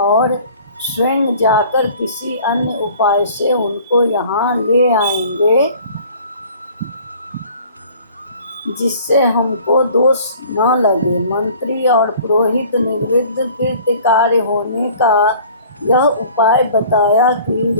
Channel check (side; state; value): both; inverted; correlation -0.50